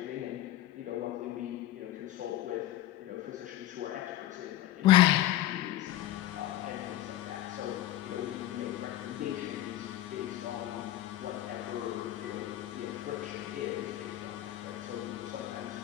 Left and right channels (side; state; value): right; quieter; 14.1 dB